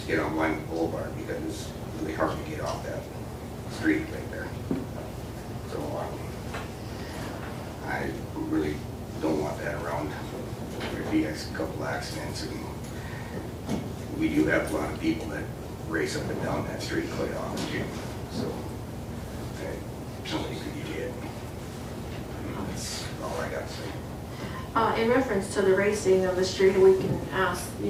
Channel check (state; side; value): identical; both; correlation 1.00